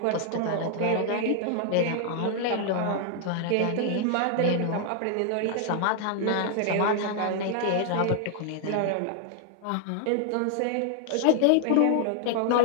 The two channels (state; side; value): different; both; correlation 0.00